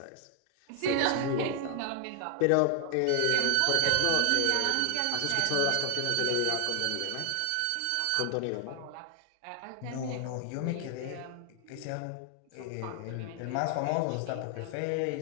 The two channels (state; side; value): different; both; correlation 0.00